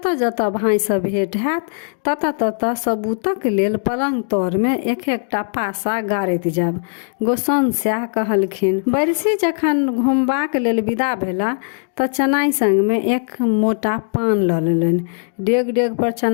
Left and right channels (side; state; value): right; silent; digital silence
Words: जतऽ भाई से भेंट हैत ततऽ ततऽ सबूतक लेल पलंग तर में एक एकटा पासा गाड़ैत जायब। गोसाउन सएह कहलखिन। बैरसी जखन घुमबाक लेल विदा भेला तऽ चनाई संग में एक मोटा पान लऽ लेलनि। डेग डेग पर